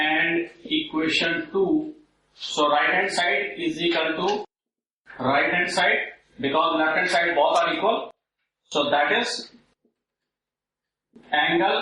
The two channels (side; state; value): both; identical; correlation 1.00